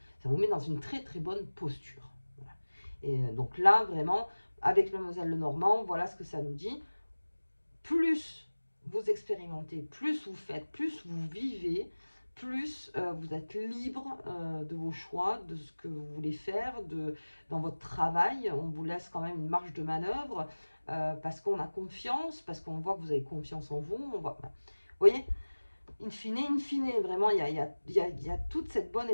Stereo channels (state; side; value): inverted; both; correlation -1.00